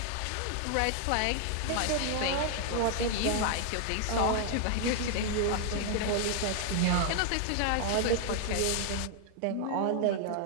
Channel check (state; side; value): different; both; correlation 0.00